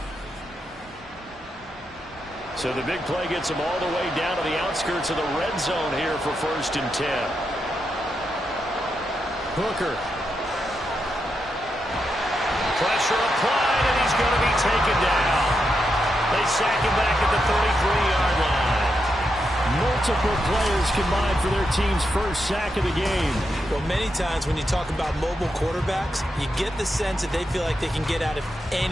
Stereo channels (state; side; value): normal; both; correlation 0.84